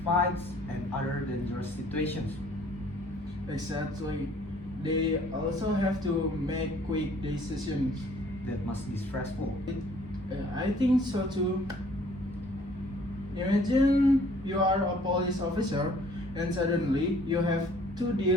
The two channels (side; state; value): both; normal; correlation 0.57